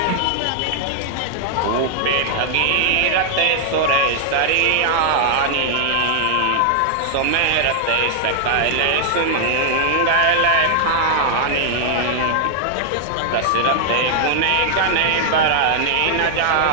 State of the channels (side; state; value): both; different; correlation -0.01